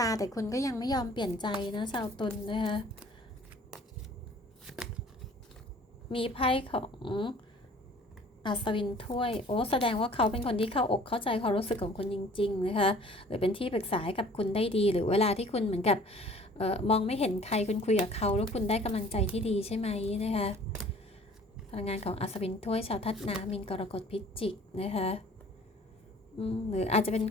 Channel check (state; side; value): normal; both; correlation 0.51